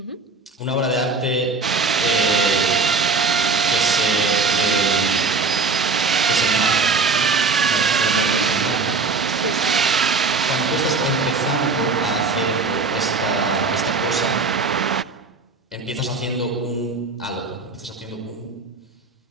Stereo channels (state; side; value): quieter; left; 4.2 dB